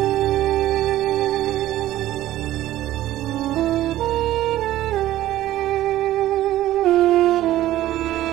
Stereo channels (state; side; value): quieter; left; 14.3 dB